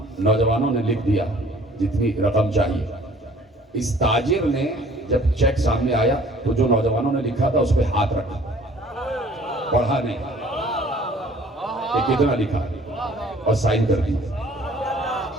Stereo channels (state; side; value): normal; both; correlation 0.54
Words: نوجوانوں نے لکھ دیا جتنی رقم چاہیے. اس تاجر نے جب چیک سامنے آیا تو جو نوجوانوں نے لکھا تھا اس پہ ہاتھ رکھا، پڑھا نہیں کہ کتنا لکھا اور سائن کر دی.